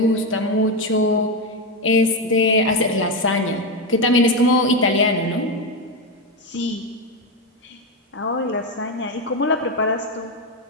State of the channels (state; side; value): normal; both; correlation 0.10